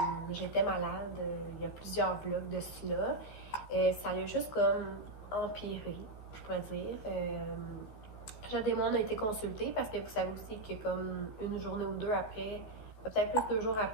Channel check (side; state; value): right; late; 14 ms